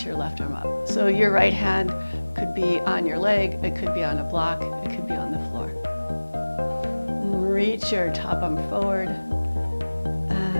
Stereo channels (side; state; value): both; inverted; correlation -1.00